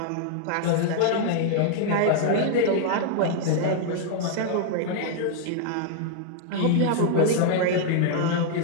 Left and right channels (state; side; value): different; both; correlation -0.01